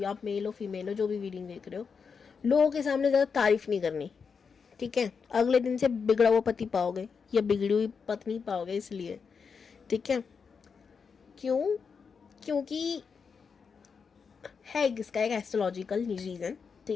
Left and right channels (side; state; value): right; quieter; 5.8 dB